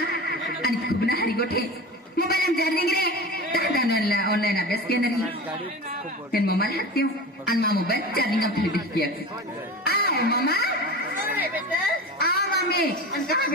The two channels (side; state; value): both; normal; correlation 0.30